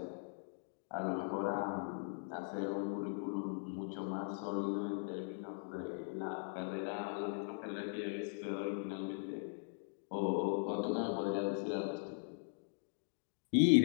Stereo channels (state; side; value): silent; right; digital silence